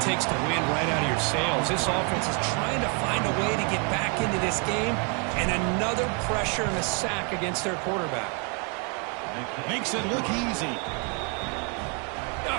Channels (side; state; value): left; quieter; 36.1 dB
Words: takes the wind right out of your sails. This offense is trying to find a way to get back into this game, and another pressure and a sack against their quarterback. Makes it look easy. I